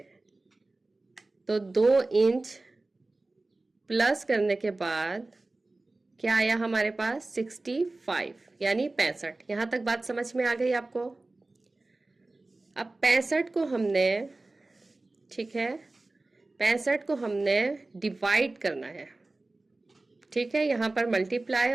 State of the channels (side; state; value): left; quieter; 3.1 dB